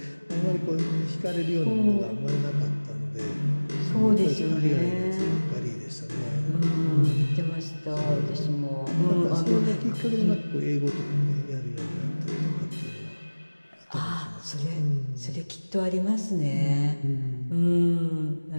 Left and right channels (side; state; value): both; inverted; correlation -1.00